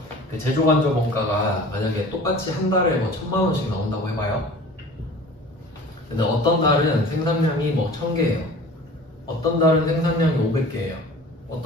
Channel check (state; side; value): normal; both; correlation 0.43